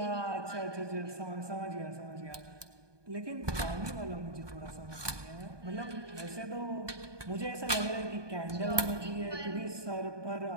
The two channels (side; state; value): left; late; 1.2 ms